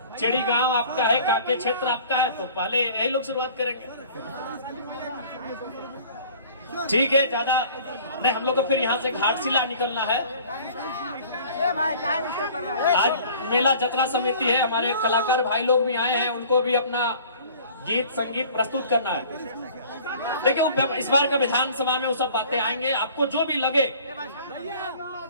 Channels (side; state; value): both; inverted; correlation -0.49